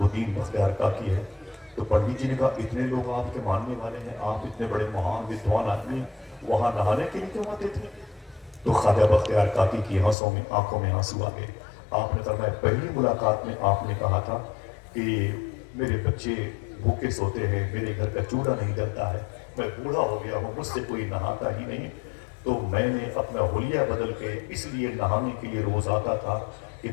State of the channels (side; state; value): right; drops out; at 10.2 s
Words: الدین بختیار کاکی ہے۔ تو پنڈت جی نے کہا اتنے لوگ آپ کے ماننے والے ہیں، آپ اتنے بڑے مہان ودوان آدمی ہیں، وہاں نہانے کے لیے کیوں آتے تھے؟ تو خواجہ بختیار کاکی کی آنکھوں میں آنسو آ گئے۔ آپ نے فرمایا پہلی ملاقات میں آپ نے کہا تھا کہ میرے بچے بھوکے سوتے ہیں، میرے گھر کا چولہا نہیں جلتا ہے، میں بوڑھا ہو گیا ہوں، مجھ سے کوئی نہاتا ہی نہیں، تو میں نے اپنا حلیہ بدل کے اس لیے نہانے کے لیے روز آتا تھا کہ